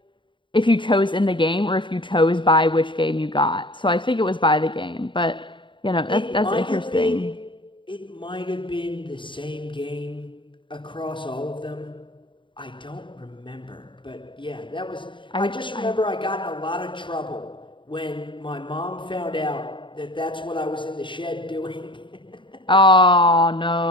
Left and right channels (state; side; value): late; right; 0.24 ms